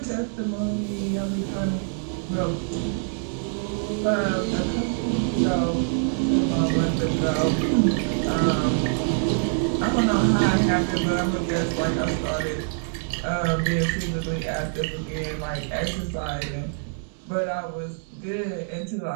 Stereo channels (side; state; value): left; silent; digital silence